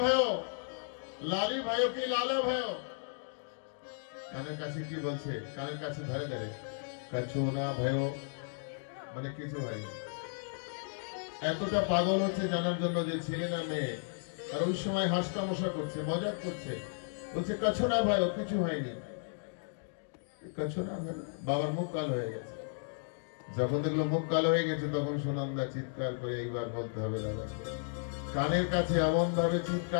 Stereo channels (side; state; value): right; silent; digital silence